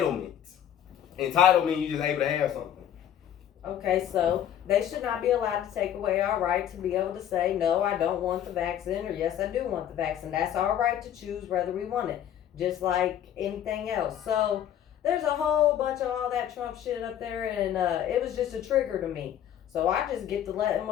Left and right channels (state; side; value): quieter; right; 10.4 dB